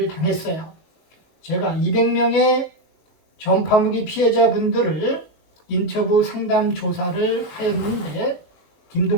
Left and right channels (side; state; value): right; late; 19 ms